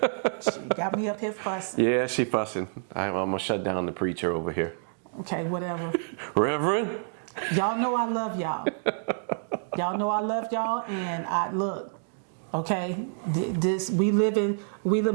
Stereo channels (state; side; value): silent; left; digital silence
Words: She got me up here fussing. Yeah, she fussing. I'm gonna shut down the preacher over here. Okay, whatever. Reverend? Y'all know I love y'all. Y'all know I love y'all, and look, okay,